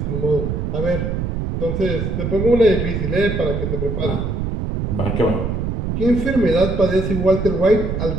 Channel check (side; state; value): right; noise; rumble, 2 dB below the sound